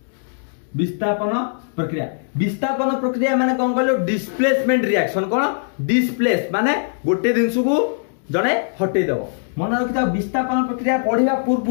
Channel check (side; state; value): right; silent; digital silence